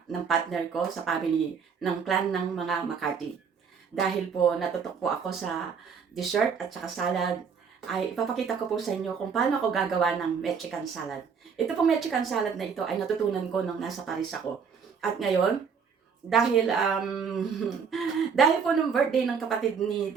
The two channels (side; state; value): left; quieter; 6.2 dB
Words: ng partner ko sa family ng clan ng mga McCarthy. Dahil po natutok po ako sa dessert at saka salad, ay ipapakita ko po sa inyo kung paano ako gagawa ng Mexican salad. Ito pong Mexican salad na ito ay natutunan ko nung nasa Paris ako. At ngayon, dahil dahil po nung birthday ng kapatid ni